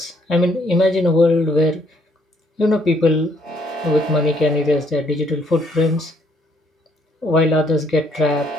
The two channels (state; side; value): normal; both; correlation 0.68